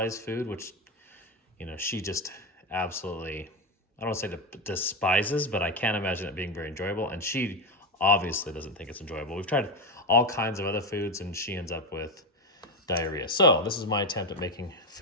food, which, she just absolutely, I don't want to say despises, but I can't imagine it being very enjoyable. And she obviously doesn't think it's enjoyable. We've tried all kinds of other foods, and she ends up with diarrhea. So this is my attempt at making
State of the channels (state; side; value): normal; both; correlation 0.12